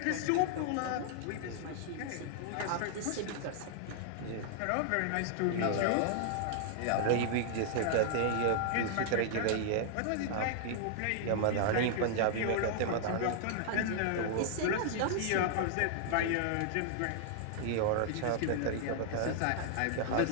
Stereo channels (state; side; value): different; both; correlation -0.01